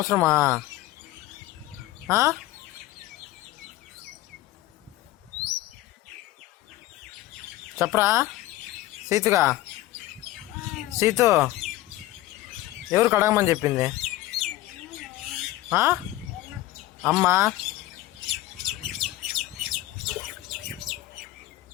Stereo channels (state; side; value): quieter; right; 16.5 dB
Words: చెప్పరా సీతుగా. సీతు ఎవరు కడగమని చెప్పింది? అమ్మా.